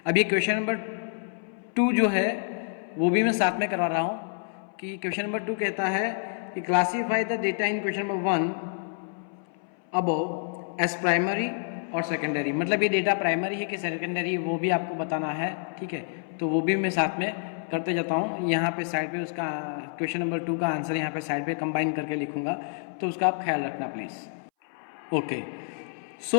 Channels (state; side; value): silent; right; 59 dB below the other